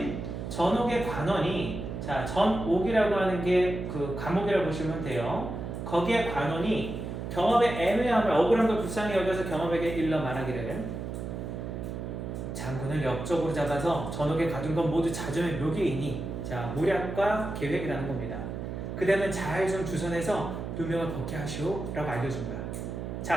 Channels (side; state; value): right; noise; hum, 6 dB below the sound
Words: 전옥의 관원이, 자, 전옥이라고 하는 게 그 감옥이라고 보시면 돼요. 거기에 관원이 경업의 애매함을, 억울한 걸 불쌍히 여겨서 경업에게 일러 말하기를 장군을 역적으로 잡아서 전옥에 가둔 건 모두 자점의 묘기이니, 자, 모략과 계획이라는 겁니다. 그대는 잘 좀 주선해서 누명을 벗게 하시오 라고 알려준 거야.